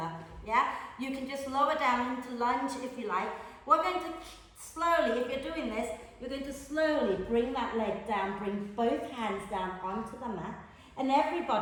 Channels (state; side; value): identical; both; correlation 1.00